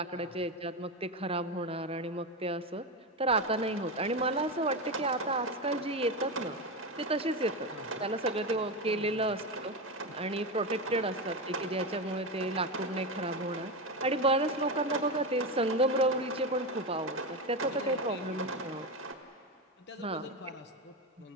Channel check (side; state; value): both; normal; correlation 0.16